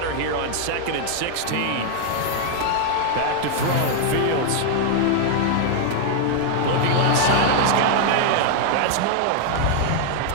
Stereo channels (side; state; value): both; different; correlation 0.00